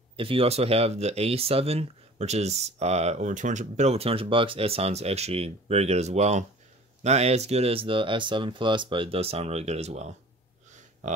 If you also have the A7, which is over 200, bit over $200, it sounds actually very good as well. Not as good as the S7 Plus, but it does sound really good as well.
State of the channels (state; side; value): normal; both; correlation 0.45